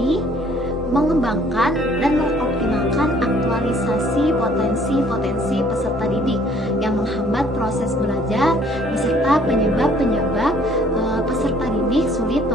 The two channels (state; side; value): normal; both; correlation 0.59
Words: mengembangkan, dan mengoptimalkan aktualisasi potensi-potensi peserta didik yang menghambat proses belajar beserta penyebab-penyebab peserta didik sulit